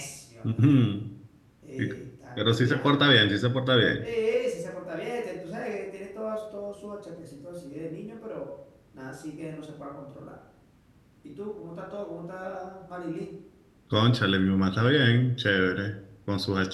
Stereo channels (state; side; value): identical; both; correlation 1.00